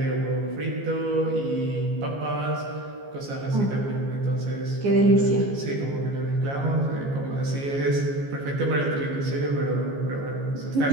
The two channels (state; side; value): late; left; 15 ms